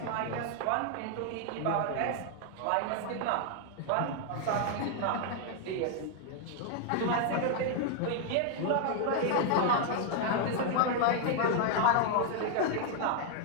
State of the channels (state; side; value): different; both; correlation 0.00